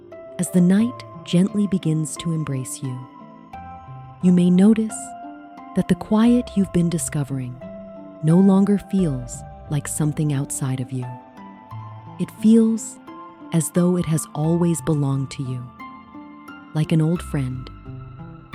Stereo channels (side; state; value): both; identical; correlation 1.00